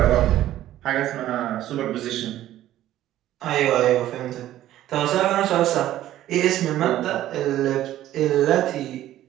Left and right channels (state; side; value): quieter; left; 13.4 dB